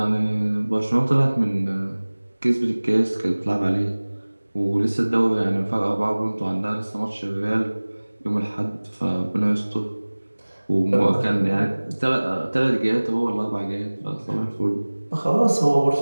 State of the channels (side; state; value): both; inverted; correlation -1.00